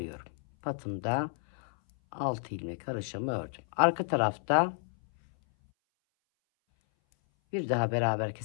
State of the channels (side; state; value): right; silent; 57 dB below the other